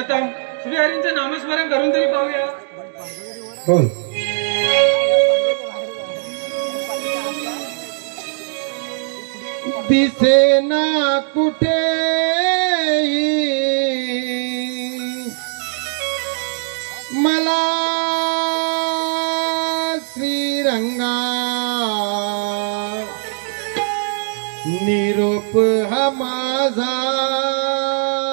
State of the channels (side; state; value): left; silent; digital silence